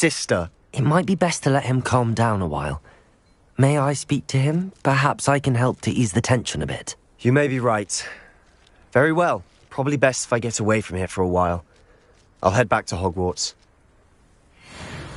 It might be best to let him calm down a while. May I speak to him? Perhaps I can help to ease the tension a bit. You may be right. Very well. Probably best if I get away from here for a while. I'll head back to Hogwarts.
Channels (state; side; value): identical; both; correlation 1.00